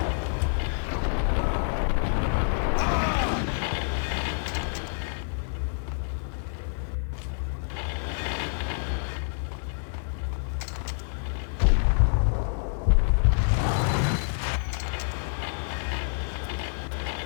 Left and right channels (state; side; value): silent; right; digital silence